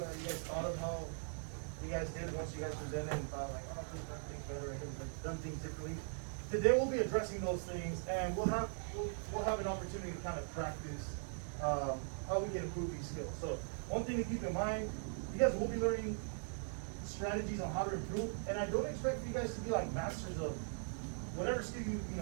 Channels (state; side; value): silent; left; digital silence